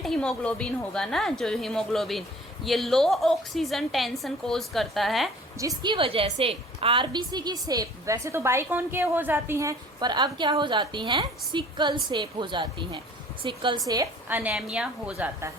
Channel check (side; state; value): both; normal; correlation 0.49